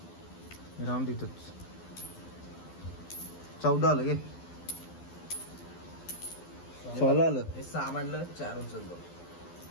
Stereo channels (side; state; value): right; late; 12 ms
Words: राम तिथंच. 14 आलं गे. 16 आलं. 6 म्हणलं 4 उचलतो.